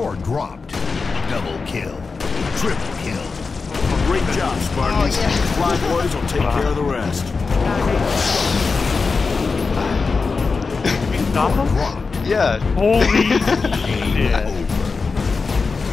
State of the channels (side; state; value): right; quieter; 4.5 dB